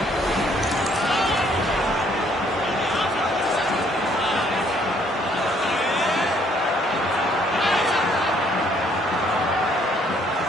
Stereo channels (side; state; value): both; normal; correlation 0.65